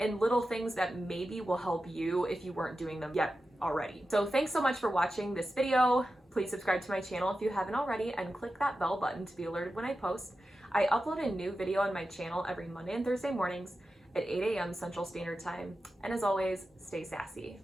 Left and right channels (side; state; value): both; normal; correlation 0.92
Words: little things that maybe will help you if you weren't doing them yet already. So thanks so much for watching this video. Please subscribe to my channel if you haven't already, and click that bell button to be alerted when I post. I upload a new video on my channel every Monday and Thursday mornings at 8 a.m. Central Standard Time. And as always, stay sassy.